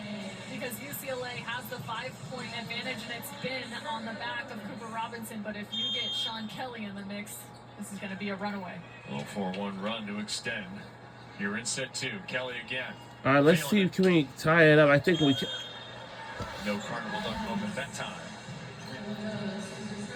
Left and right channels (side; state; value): both; identical; correlation 1.00